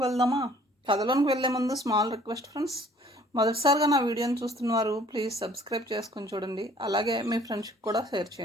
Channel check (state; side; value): normal; both; correlation 0.56